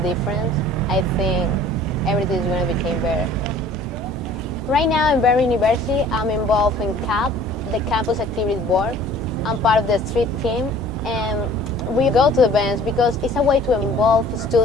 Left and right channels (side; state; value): both; normal; correlation 0.51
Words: I think everything is going to become better. Right now in Berry University, I'm involved in CAP, the Campus Activities Board. I'm part of the street team, and we go to events because it's a way to involve